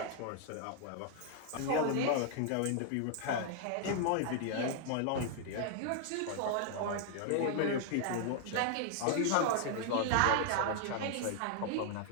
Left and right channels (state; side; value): different; both; correlation 0.00